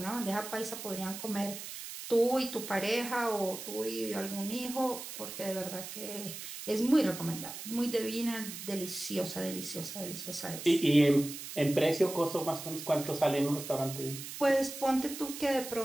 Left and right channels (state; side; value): noise; right; hiss, 9 dB below the sound